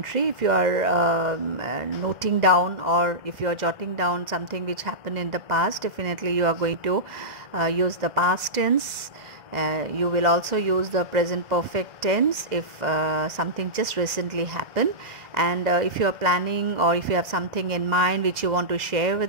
If you are noting down or if you are jotting down something which happened in the past, definitely you are going to use the past tense. You will also use the present perfect tense if something just recently happened, and if you are planning or if you have something in mind which you want to share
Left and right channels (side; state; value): left; late; 2.1 ms